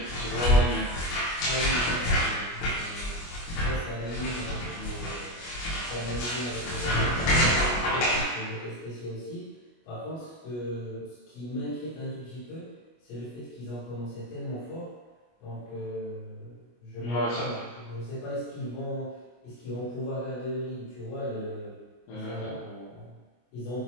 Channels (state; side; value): late; right; 25 ms